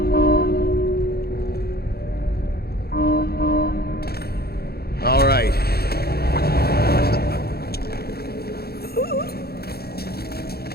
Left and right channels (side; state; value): right; late; 0.46 ms